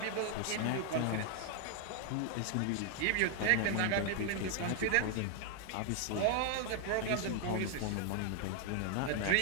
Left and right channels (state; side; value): different; both; correlation 0.00